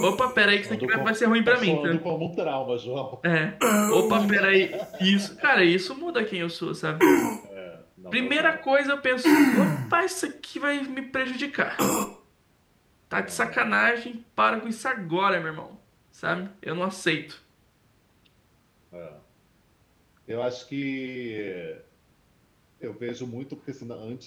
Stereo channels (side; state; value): both; identical; correlation 1.00